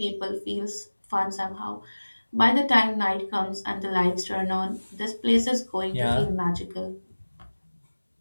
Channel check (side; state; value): both; inverted; correlation -1.00